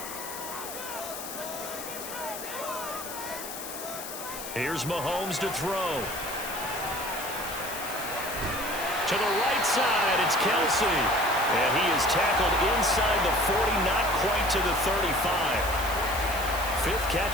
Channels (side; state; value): left; noise; hiss, 9 dB below the sound